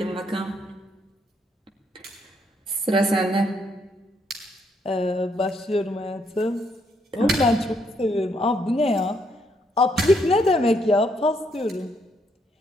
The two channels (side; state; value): both; normal; correlation 0.73